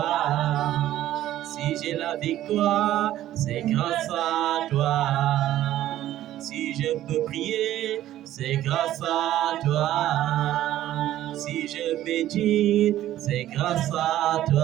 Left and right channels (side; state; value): left; quieter; 13.3 dB